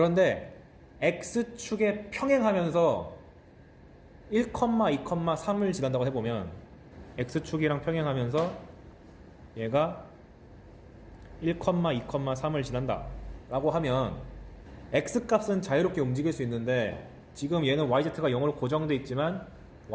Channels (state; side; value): identical; both; correlation 1.00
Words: X축에 평행하면서 1, 2, 3을 지난다고 해보면, X축이랑 평행하면서 얘가 1, 2, 3을 지난다 라고 하면 X값은 자유롭게 움직일 수 있는데, 지금 얘는 YZ가 0으로 고정되어 있지만